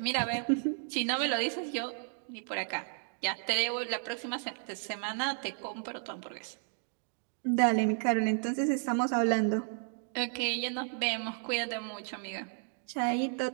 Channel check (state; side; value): silent; left; 56 dB below the other